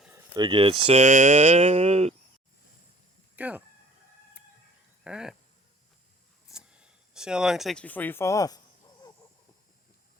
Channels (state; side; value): normal; both; correlation 0.52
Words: Get set, go. All right. See how long it takes before you fall off.